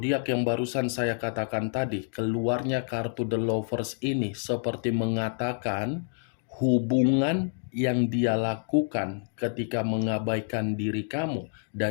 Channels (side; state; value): right; silent; digital silence